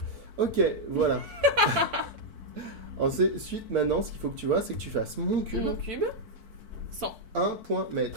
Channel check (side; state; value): left; late; 4.5 ms